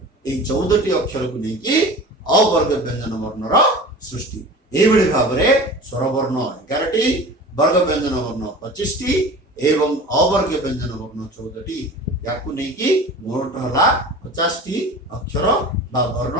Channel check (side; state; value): both; normal; correlation 0.37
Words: ए 14 टी अक्षर को नहीं कि अवर्ग व्यंजन वर्णर सृष्टि। एई भली भाव रे स्वरवर्ण 11 टी, वर्ग व्यंजन वर्ण 25 टी एवं अवर्ग व्यंजन वर्ण 14 टी। याकू नहीं कि मोट हला 50 टी अक्षर बा